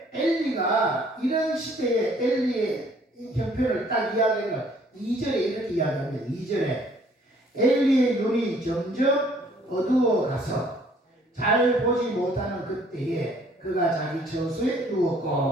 엘리가 이런 시대에 엘리의 형편을 딱 이야기하면 2절에 이렇게 이야기합니다. 2절에 엘리의 눈이 점점 어두워가서 잘 보지 못하는 그때에 그가 자기 처소에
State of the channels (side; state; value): both; normal; correlation 0.59